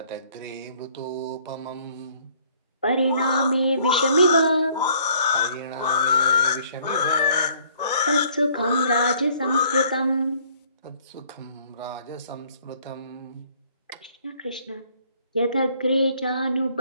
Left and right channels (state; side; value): inverted; both; correlation -0.61